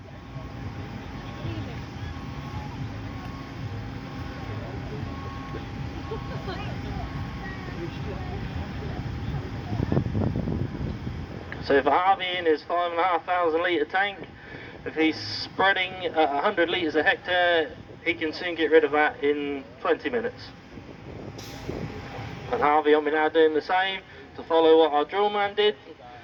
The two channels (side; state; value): both; identical; correlation 1.00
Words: So for Harvey in his 5,500 litre tank, if he's spreading 100 litres a hectare, he can soon get rid of that in 20 minutes. And Harvey will be now doing the same to follow what our drill man did.